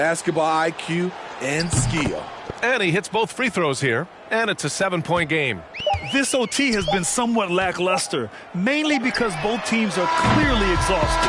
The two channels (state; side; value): identical; both; correlation 1.00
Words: IQ and skill. And he hits both free throws here, and it's a 7-point game. This OT has been somewhat lackluster, mainly because both teams are clearly